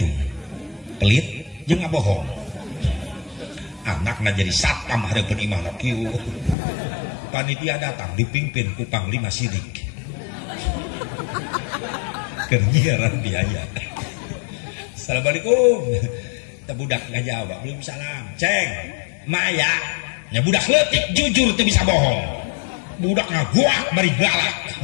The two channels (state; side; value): drops out; right; at 6.6 s